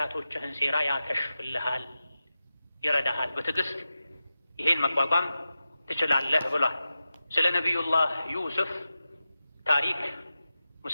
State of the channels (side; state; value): both; inverted; correlation -0.91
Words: ሴራ ያከሽፍልሃል፣ ይረዳሃል። በትዕግስት ይሄን መቋቋም ትችላለህ ብሏል። ስለ ነቢዩላህ ዩሱፍ ታሪክ